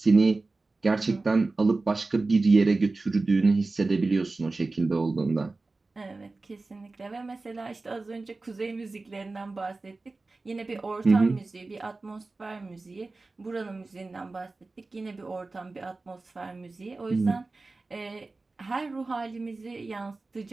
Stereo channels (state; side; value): quieter; left; 3.5 dB